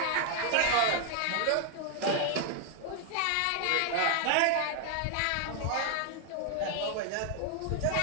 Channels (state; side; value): different; both; correlation 0.00